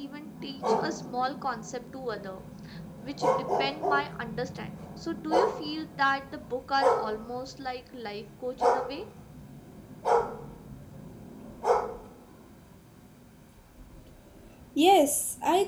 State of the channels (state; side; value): identical; both; correlation 1.00